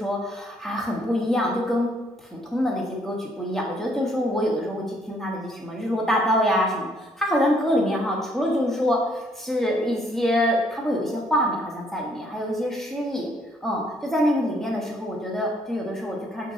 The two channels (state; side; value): normal; both; correlation 0.67